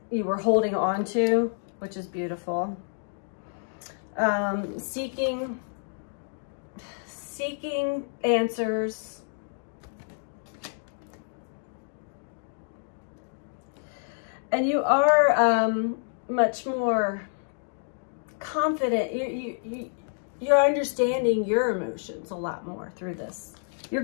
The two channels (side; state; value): right; silent; digital silence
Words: you were holding on to, which is beautiful. Seeking answers. And you are much more confident. You're understanding your emotions a lot more through this. You're